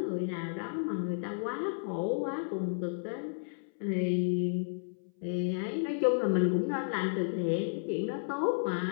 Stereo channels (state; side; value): silent; right; 56 dB below the other